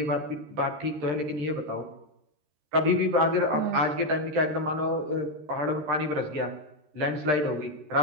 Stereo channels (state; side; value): late; left; 13 ms